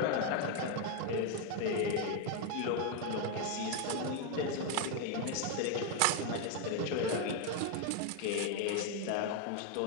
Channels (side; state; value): both; different; correlation 0.01